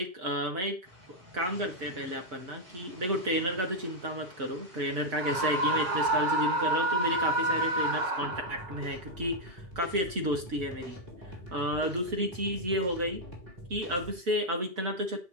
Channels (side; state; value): left; late; 5.6 ms